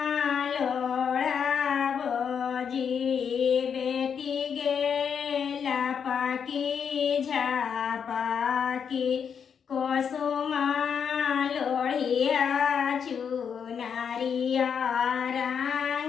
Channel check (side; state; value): right; quieter; 7.2 dB